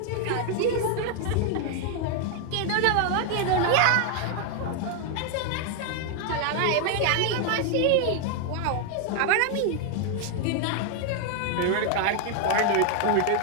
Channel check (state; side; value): different; both; correlation 0.00